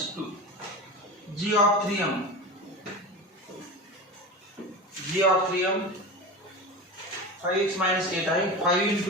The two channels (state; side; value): normal; both; correlation 0.27